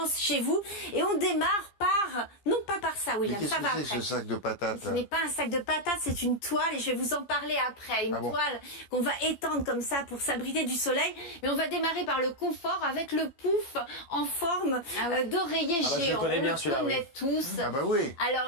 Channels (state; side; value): late; right; 15 ms